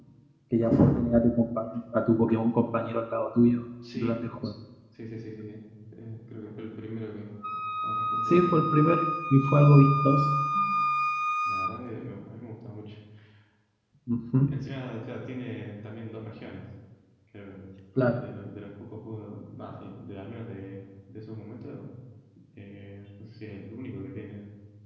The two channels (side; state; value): both; identical; correlation 1.00